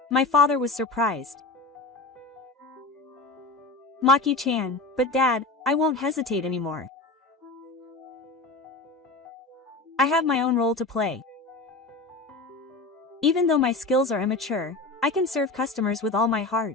My father was surprised. Maki-chan, but Dad, I won't hesitate anymore. I have my own role to play. Even though my skills are immature, I can serve customers with all my heart.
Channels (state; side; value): quieter; right; 3.3 dB